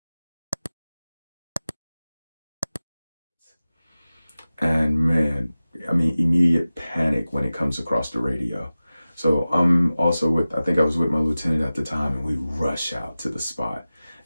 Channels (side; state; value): both; inverted; correlation -0.96